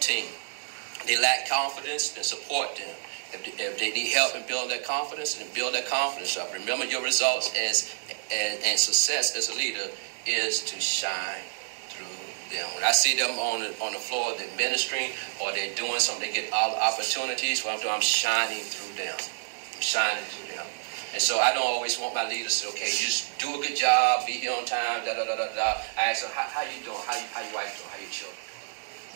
team. They lack confidence, then support them. If they need help in building their confidence, then build their confidence up. Remember your results and success as a leader is to shine through them. When I see them on the floor, they're ministering or they're doing something, they get all the opportunities. What I'm doing, I'm shining through them. I'm shining through them. And so I don't always want my leaders to say, okay, just do a good job, be here on time, da-da-da-da-da. I ask them, how you doing? How your wife doing? How your children?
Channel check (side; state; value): left; silent; digital silence